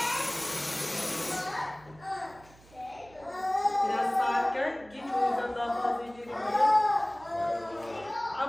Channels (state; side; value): noise; right; hum, 25 dB below the sound